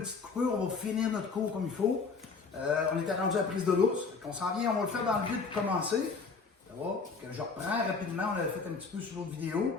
coupure, on va finir notre cours comme il faut. On était rendu à la prise de l'ours. On s'en vient, on va le faire dans le vide pour commencer. Ça va? Que je reprends rapidement, on l'avait fait un petit peu sur l'autre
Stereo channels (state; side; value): quieter; right; 4.8 dB